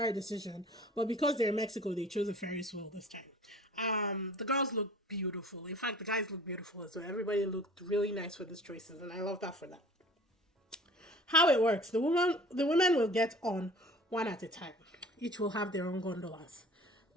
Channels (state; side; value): normal; both; correlation 0.47